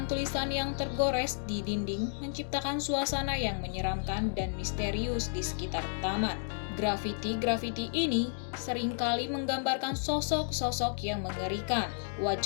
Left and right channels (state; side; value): silent; right; digital silence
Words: yang tergores di dinding menciptakan suasana yang menyeramkan dan misterius di sekitar taman. Grafiti-grafiti ini seringkali menggambarkan sosok-sosok yang mengerikan,